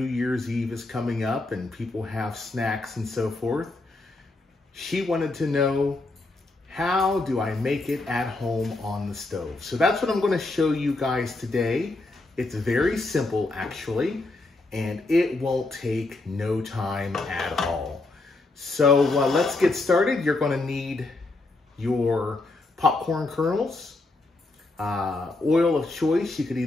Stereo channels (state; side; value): quieter; right; 3.1 dB